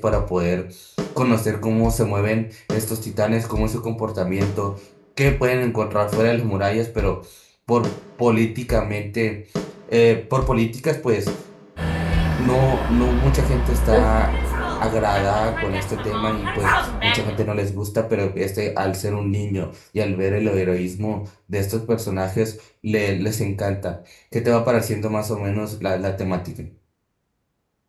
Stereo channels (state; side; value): identical; both; correlation 1.00